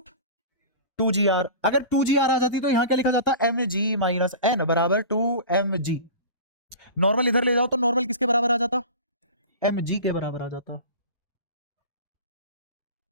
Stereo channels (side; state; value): both; inverted; correlation -0.35